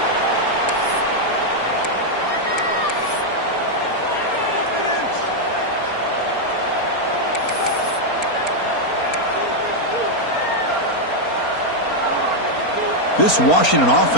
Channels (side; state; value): right; late; 4.3 ms